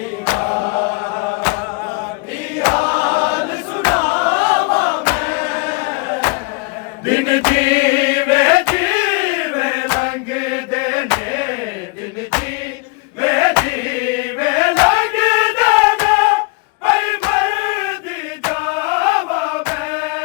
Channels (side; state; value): right; quieter; 27.9 dB